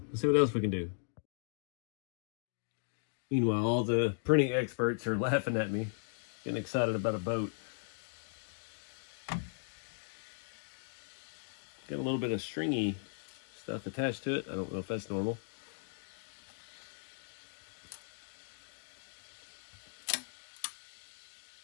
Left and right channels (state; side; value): silent; right; digital silence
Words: let's see what else we can do. Meanwhile, all the printing experts are laughing at me, getting excited about a boat. Got a little bit of stringy stuff attached to it. I don't know if that's normal.